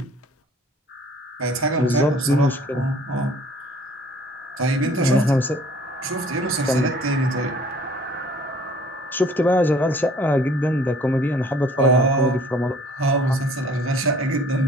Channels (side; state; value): both; normal; correlation 0.54